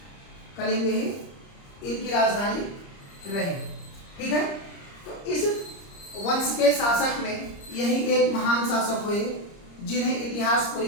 कलिंग ही इनकी राजधानी रही। ठीक है, तो इस वंश के शासक में यही एक महान शासक हुए जिन्हें इतिहास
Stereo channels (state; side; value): late; right; 30 ms